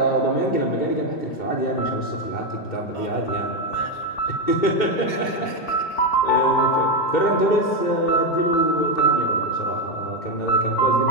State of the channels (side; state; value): right; late; 2.7 ms